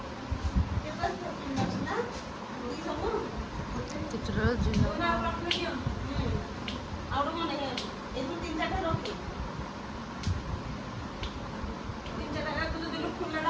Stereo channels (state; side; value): identical; both; correlation 1.00